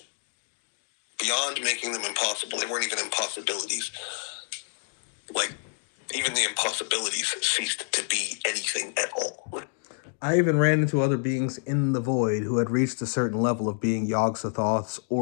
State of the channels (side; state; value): right; silent; 57 dB below the other